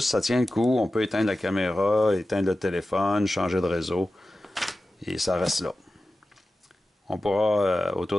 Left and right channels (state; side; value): normal; both; correlation 0.94